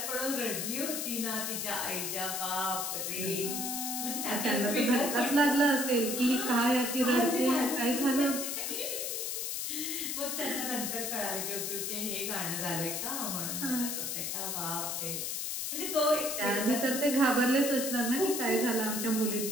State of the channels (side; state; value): left; noise; hiss, 2 dB below the sound